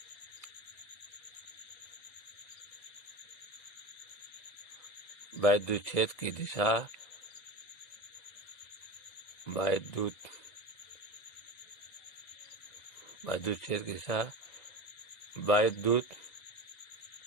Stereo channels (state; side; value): late; right; 2.0 ms